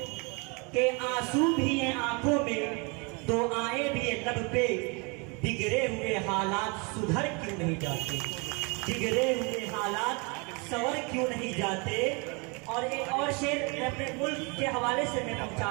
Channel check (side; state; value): left; quieter; 31.0 dB